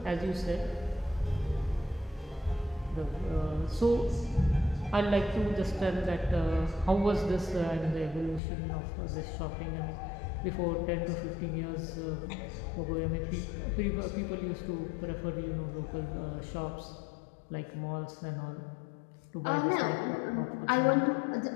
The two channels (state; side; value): drops out; right; at 8.4 s